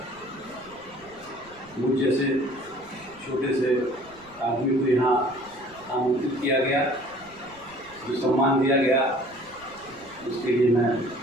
मुझ जैसे छोटे से आदमी को यहाँ आमंत्रित किया गया, जो सम्मान दिया गया, उसके लिए मैं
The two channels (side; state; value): right; noise; rumble, 26 dB below the sound